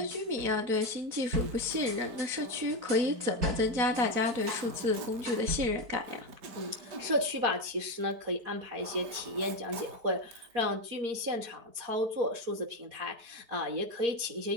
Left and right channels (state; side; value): late; left; 4.6 ms